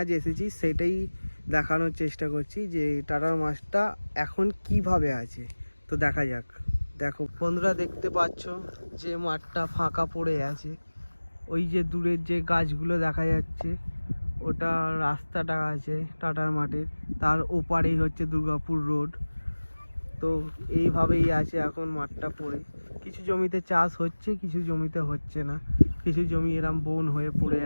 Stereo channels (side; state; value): both; inverted; correlation -1.00